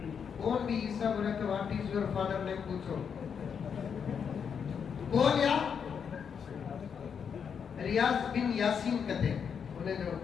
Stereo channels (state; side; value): quieter; right; 7.0 dB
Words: کون بھی عیسیٰ بولے تو what is your father name پوچھو, کون یا ریاض بن یاسین کہتے ہیں. انہیں جو